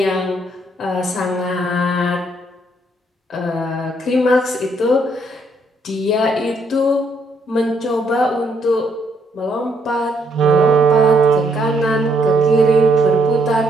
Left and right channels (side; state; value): both; normal; correlation 0.72